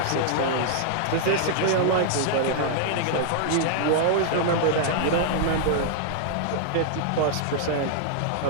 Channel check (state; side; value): different; both; correlation -0.01